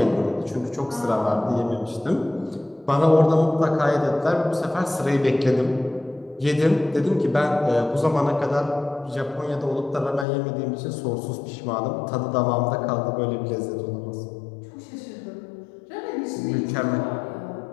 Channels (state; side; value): drops out; right; at 10.2 s